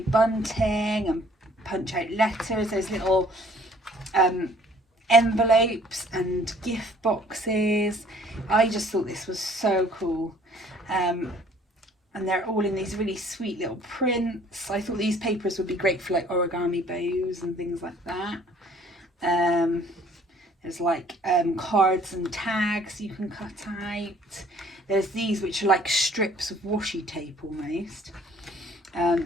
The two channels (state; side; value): normal; both; correlation 0.57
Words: and punch out letters, there's little envelopes and gift boxes. I just thought this was so cool, and they're all in these really sweet little prints. I thought these papers would be great for like origami bows and things like that. There's like cards and tags you can cut out. There's these which are like strips of washi tape almost.